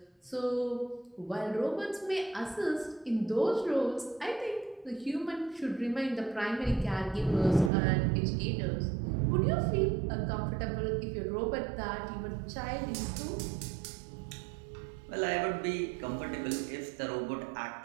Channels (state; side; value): drops out; left; at 7.7 s